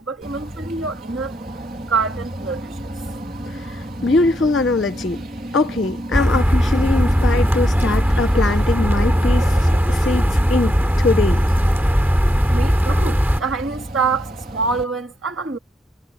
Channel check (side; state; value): both; normal; correlation 0.80